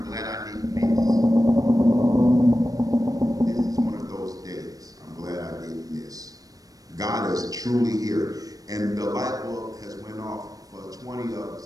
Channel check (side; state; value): left; late; 0.18 ms